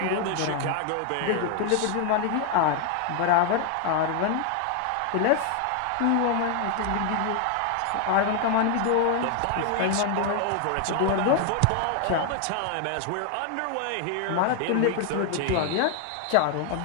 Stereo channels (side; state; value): both; different; correlation 0.00